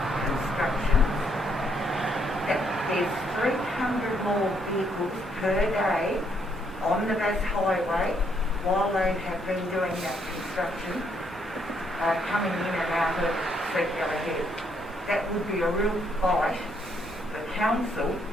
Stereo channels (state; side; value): normal; both; correlation 0.72